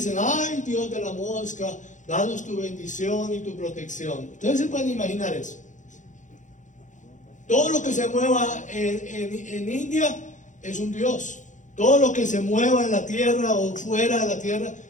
ay, Dios de la mosca, danos tu bendición y tu protección. Ustedes se pueden imaginar eso. Todo lo que se mueva en India es un dios. Todo lo que se mueva en la tierra o fuera de la tierra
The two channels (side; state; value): right; late; 0.36 ms